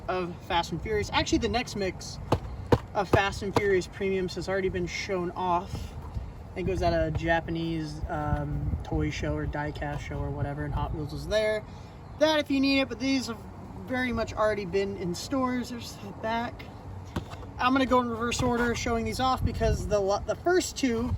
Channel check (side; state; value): both; identical; correlation 1.00